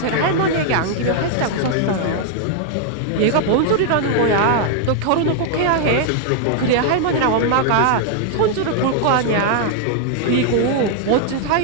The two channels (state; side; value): different; both; correlation 0.00